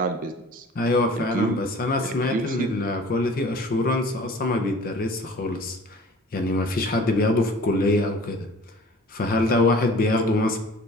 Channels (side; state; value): both; normal; correlation 0.47